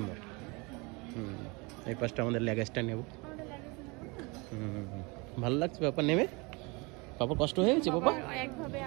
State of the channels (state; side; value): quieter; left; 27.7 dB